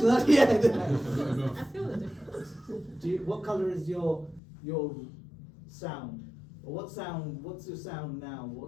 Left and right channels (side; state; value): right; drops out; at 4.4 s